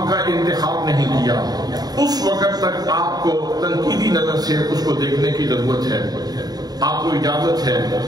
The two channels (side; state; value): left; late; 0.19 ms